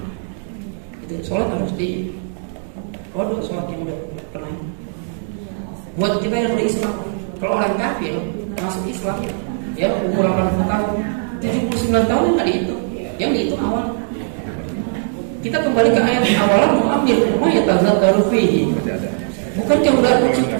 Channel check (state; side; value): silent; left; digital silence